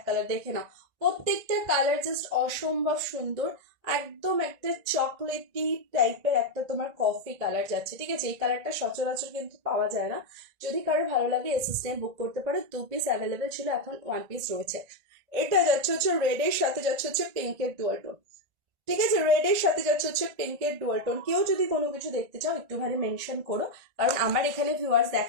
কালার, দেখে নাও। প্রত্যেকটা কালার জাস্ট অসম্ভব সুন্দর। একদম একটা চকলেটি টাইপের একটা তোমার কফি কালার যাচ্ছে, ঠিক আছে। এই কালারটা সচরাচর কিন্তু পাওয়া যায় না। যদি কারো ভালো লাগে এসএসএম বুক করতে পারো, 2 পিস অ্যাভেলেবেল ছিল, এখন 1 পিস রয়েছে। এটা যাচ্ছে হচ্ছে রেডের সাথে যাচ্ছে হচ্ছে পিঙ্কের ডুয়াল টোন, ঠিক আছে, রেডের সাথে যাচ্ছে হচ্ছে পিঙ্কের ডুয়াল টোন। কেউ যদি কোনো কিছু দেখতে চাও একটুখানি মেনশন করো, কারণ আমার এখানে ভিউয়ার্স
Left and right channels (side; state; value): left; late; 1.9 ms